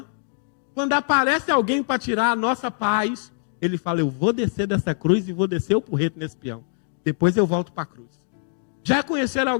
quando aparece alguém para tirar a nossa paz, ele fala: eu vou descer dessa cruz e vou descer o porrete nesse peão. Depois eu volto para a cruz. Já conheceram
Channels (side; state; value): right; silent; digital silence